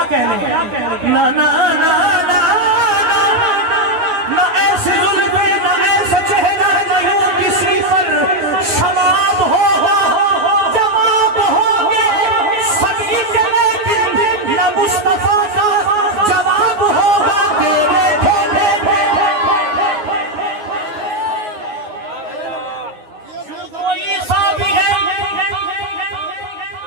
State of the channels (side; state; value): left; late; 9.6 ms